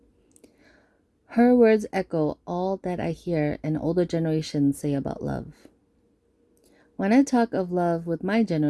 Her words echo all that I hear an older generation say about love. When I talk of love with my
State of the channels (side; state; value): both; identical; correlation 1.00